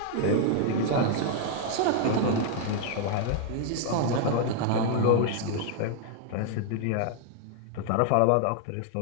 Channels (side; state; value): both; different; correlation 0.00